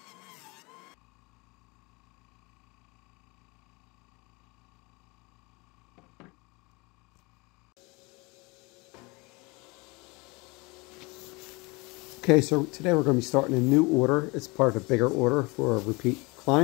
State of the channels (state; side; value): quieter; right; 26.2 dB